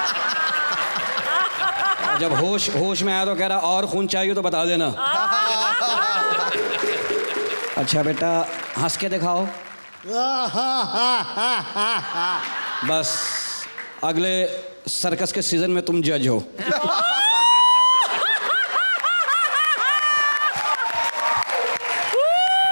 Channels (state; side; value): inverted; both; correlation -1.00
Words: और जब होश में आया तो कह रहा और खून चाहिए तो बता देना। अच्छा बेटा हंस के दिखाओ। बस अगले सर्कस के सीजन में तुम जज हो।